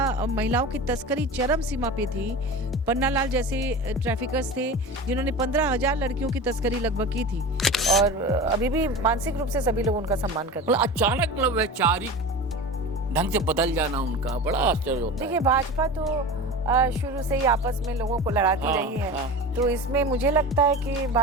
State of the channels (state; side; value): normal; both; correlation 0.31